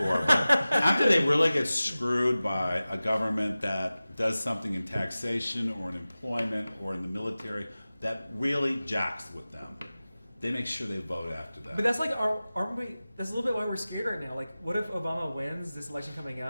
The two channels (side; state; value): both; inverted; correlation -0.97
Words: but after they really get screwed by a government that does something in taxation or in employment or in the military that really jacks with them, they make sure they vote after that. But that's like, aren't we? That's a little bit why we're scared right now. Like, what if Obama wins this election coming